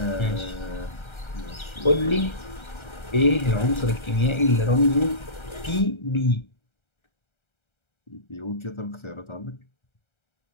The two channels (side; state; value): right; late; 1.3 ms